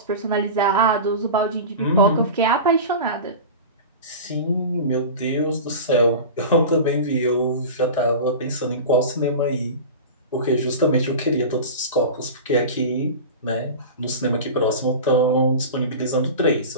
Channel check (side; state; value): both; inverted; correlation -0.31